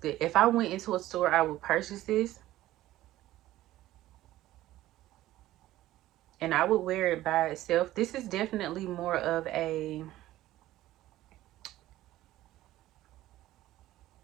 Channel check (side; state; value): left; quieter; 15.2 dB